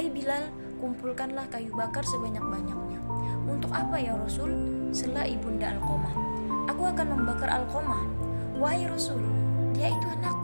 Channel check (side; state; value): both; inverted; correlation -1.00